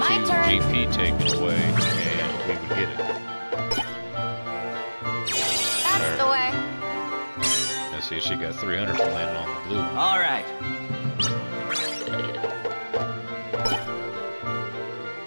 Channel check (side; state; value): both; inverted; correlation -1.00